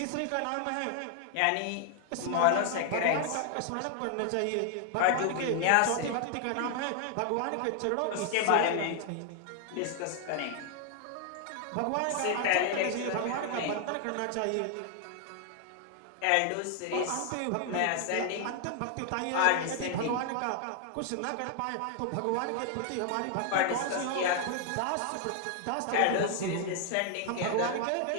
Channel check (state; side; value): different; both; correlation 0.00